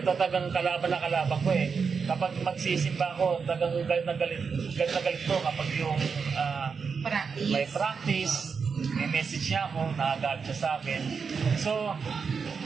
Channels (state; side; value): quieter; left; 5.7 dB